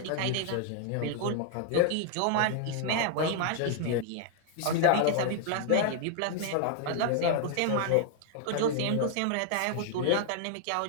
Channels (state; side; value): different; both; correlation 0.00